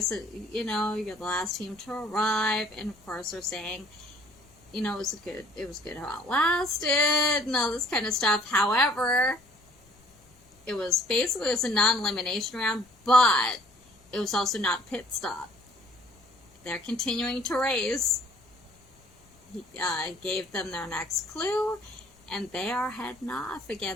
you know, you're the last team to arrive, and of course they're saying, you know, it was good how it lasted, and all this kind of stuff. However, it was a non-elimination round, but it was also not a pit stop. They're continuing to race. He gave them their next clue, and they are heading off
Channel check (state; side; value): noise; left; rumble, 30 dB below the sound